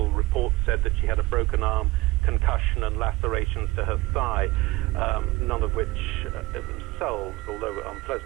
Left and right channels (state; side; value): quieter; left; 20.6 dB